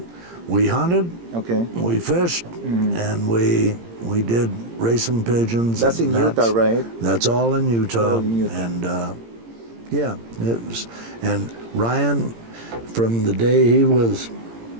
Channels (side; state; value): left; late; 17 ms